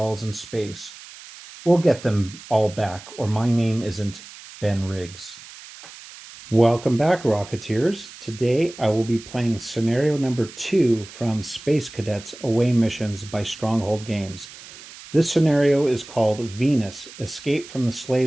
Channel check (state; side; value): noise; right; hiss, 17 dB below the sound